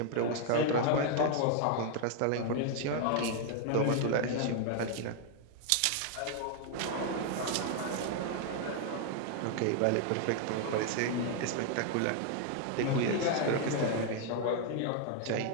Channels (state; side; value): different; both; correlation 0.00